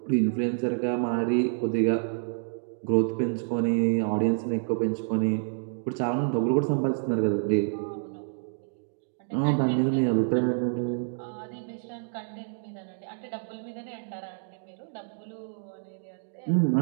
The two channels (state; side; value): silent; left; digital silence